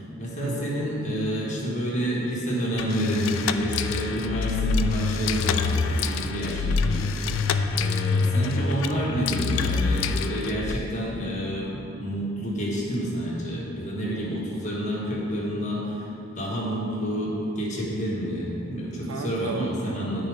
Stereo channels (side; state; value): both; normal; correlation 0.60